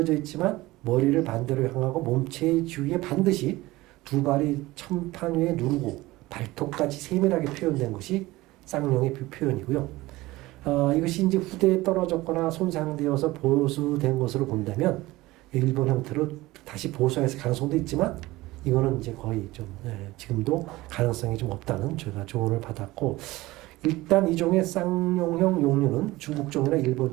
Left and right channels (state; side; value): quieter; left; 19.1 dB